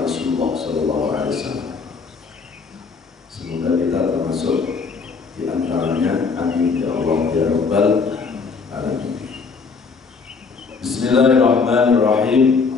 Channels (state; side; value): quieter; right; 4.9 dB